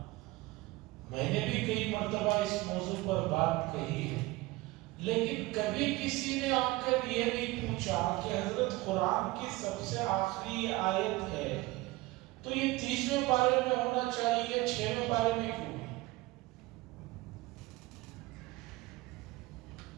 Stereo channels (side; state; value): left; quieter; 20.4 dB